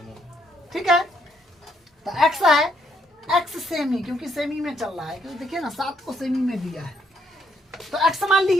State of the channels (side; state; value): both; normal; correlation 0.73